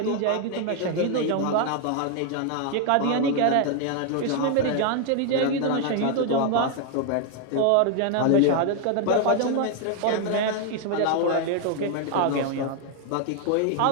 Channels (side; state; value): both; different; correlation 0.00